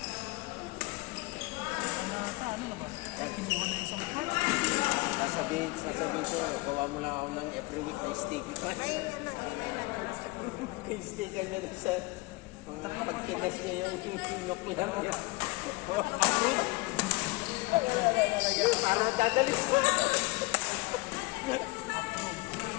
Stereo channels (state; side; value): quieter; right; 23.5 dB